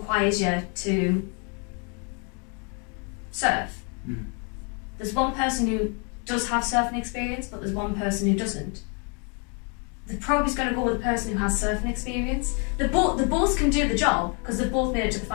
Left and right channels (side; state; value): right; quieter; 36.7 dB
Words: you to surf. There's one person who does have surfing experience, but there's one person who doesn't. The probe is going to go with the person who has surfing experience. The both can do the job because they've both made it to the